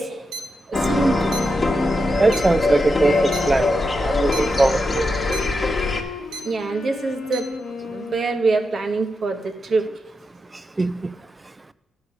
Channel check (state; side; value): normal; both; correlation 0.87